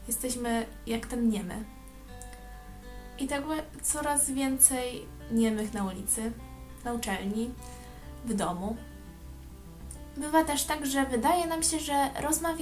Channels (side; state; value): both; identical; correlation 1.00